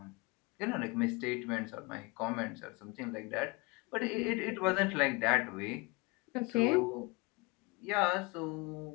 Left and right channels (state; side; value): quieter; right; 26.4 dB